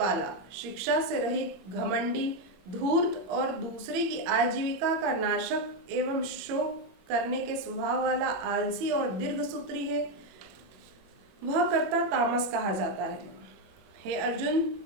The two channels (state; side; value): late; left; 21 ms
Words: शिक्षा से रहित, घमंडी, धूर्त और दूसरे की आजीविका का नाशक एवं शोक करने के स्वभाव वाला आलसी और दीर्घसूत्री है, वह कर्ता तामस कहा जाता है। हे अर्जुन,